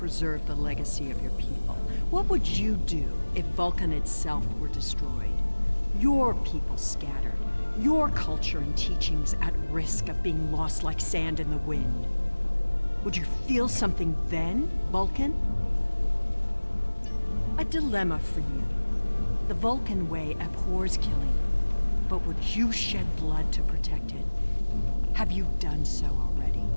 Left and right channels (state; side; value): inverted; both; correlation -1.00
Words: the legacy of your people? What would you do if Vulcan itself were destroyed? Your people scattered, your culture and teachings at risk of being lost like sand in the wind. Would you feel something then, Vulcan? A dilemma for you. The Vulcan way abhors killing, but would you shed blood to protect it? Have you done so already?